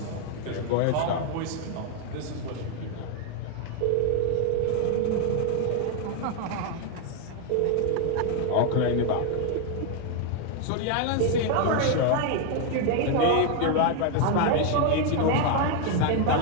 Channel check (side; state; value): both; different; correlation 0.00